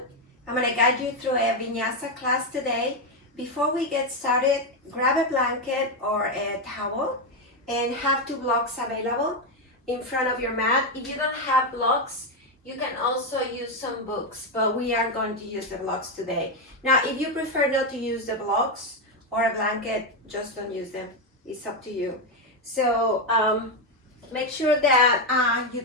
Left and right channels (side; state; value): both; normal; correlation 0.07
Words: I'm going to guide you through a vinyasa class today. Before we get started, grab a blanket or a towel and have two blocks available in front of your mat. If you don't have blocks, you can also use some books, but we are going to use the blocks today. Now, if you prefer not to use the blocks or a blanket, just don't use them. It's up to you. So make sure that you